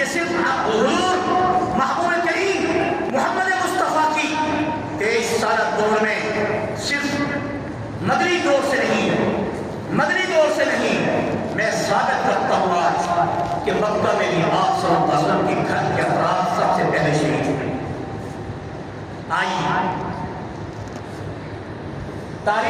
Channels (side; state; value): both; identical; correlation 1.00